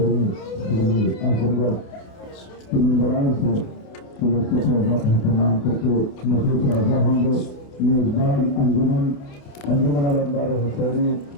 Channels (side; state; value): right; late; 28 ms